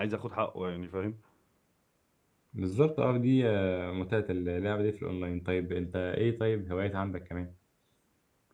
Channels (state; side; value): identical; both; correlation 1.00